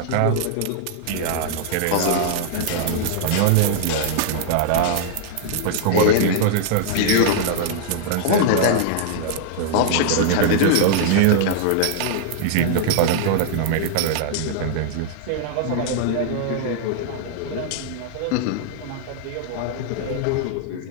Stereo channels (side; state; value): both; different; correlation -0.01